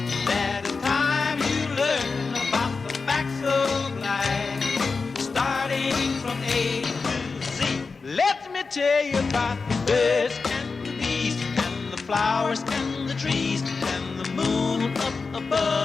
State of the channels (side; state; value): right; quieter; 4.5 dB